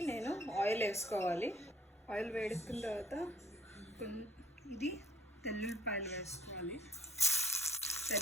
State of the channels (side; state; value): both; normal; correlation 0.58